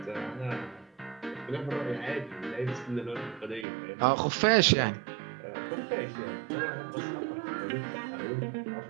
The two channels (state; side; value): drops out; left; at 3.7 s